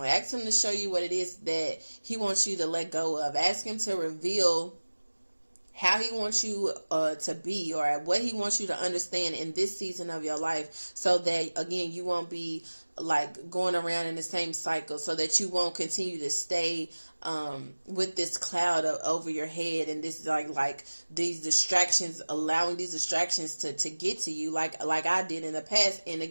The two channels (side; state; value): both; inverted; correlation -1.00